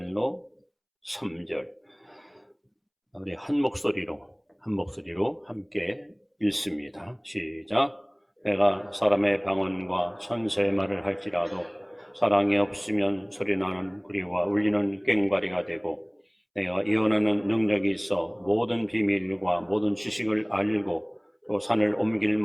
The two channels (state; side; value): identical; both; correlation 1.00